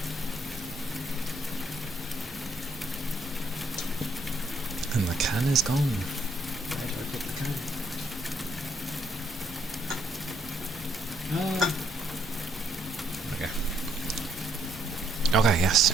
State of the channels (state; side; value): normal; both; correlation 0.71